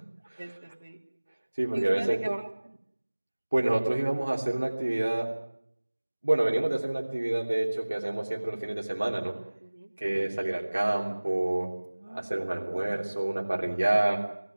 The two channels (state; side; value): inverted; both; correlation -1.00